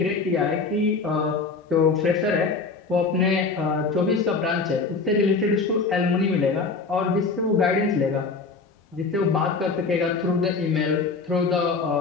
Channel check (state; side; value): quieter; right; 4.4 dB